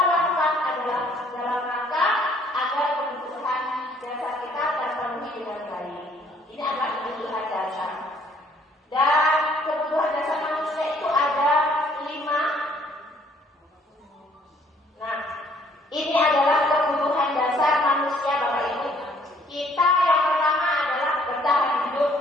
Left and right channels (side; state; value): both; normal; correlation 0.62